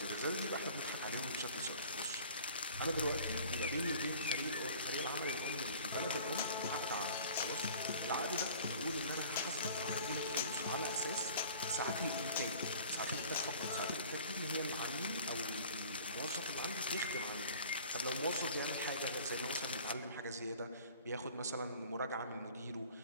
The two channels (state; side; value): inverted; both; correlation -0.47